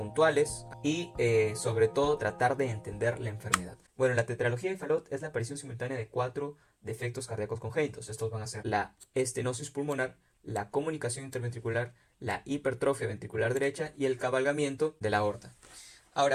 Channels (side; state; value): both; identical; correlation 1.00